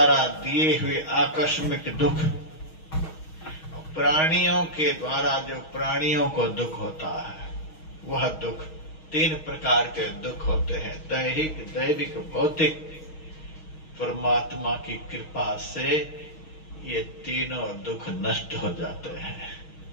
दिए हुए आकस्मिक दुख, प्राणियों के द्वारा जो प्राणियों को दुख होता है, वह दुख, तीन प्रकार के दुख होते हैं, दैहिक, दैविक, भौतिक। परमात्मा की कृपा से ये तीनों दुख नष्ट हो जाते हैं।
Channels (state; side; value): late; right; 6.3 ms